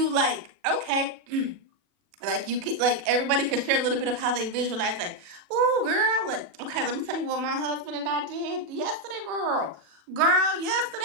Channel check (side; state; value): left; late; 40 ms